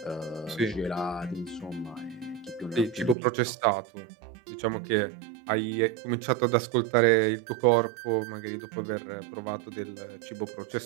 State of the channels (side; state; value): left; drops out; at 3.2 s